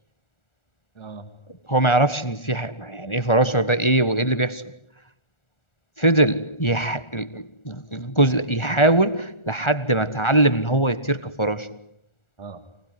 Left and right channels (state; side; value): late; right; 1.4 ms